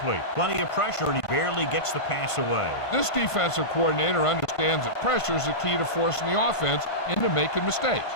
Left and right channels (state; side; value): late; right; 1.5 ms